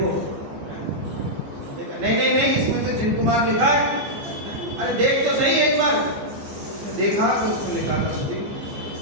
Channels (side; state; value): left; late; 14 ms